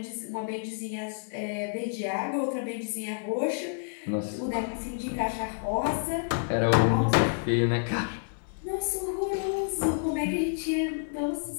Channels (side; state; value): right; silent; 58 dB below the other